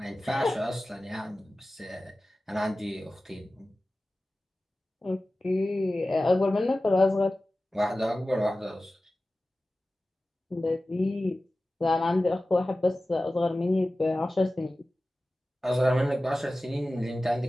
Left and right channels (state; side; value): normal; both; correlation 0.96